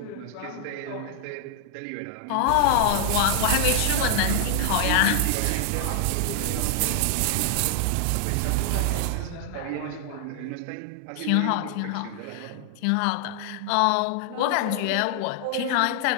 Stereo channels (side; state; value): both; different; correlation 0.00